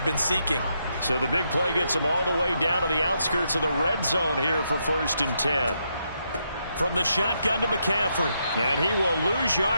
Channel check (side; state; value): both; inverted; correlation -0.80